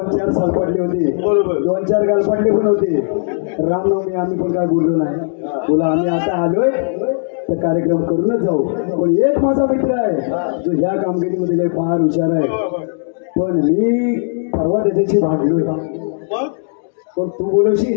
सालपाटले होते 2-4 गालपाटले पण होते रामनवमी आम्ही पण काय बोललो नाही बोला आम्ही आता आलोय तर कार्यक्रम करूनच जाऊ पण एक माझा मित्र आहे जो ह्या कामगिरीमध्ये लय फार हुशार आहे पण मी परवा त्याच्याशी भांडलोय पण तू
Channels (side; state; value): right; silent; digital silence